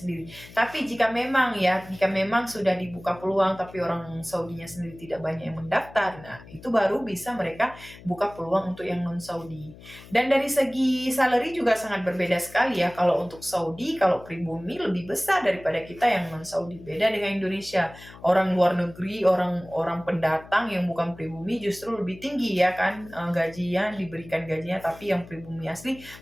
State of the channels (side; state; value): left; noise; hum, 19 dB below the sound